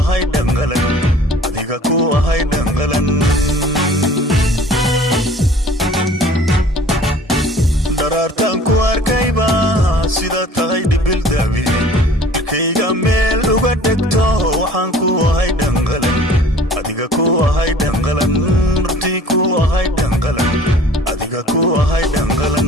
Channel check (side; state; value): both; normal; correlation 0.49